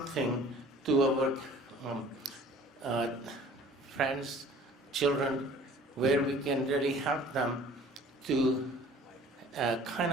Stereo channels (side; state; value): both; normal; correlation 0.50